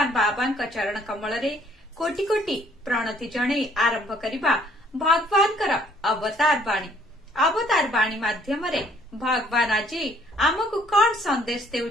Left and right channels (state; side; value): normal; both; correlation 0.62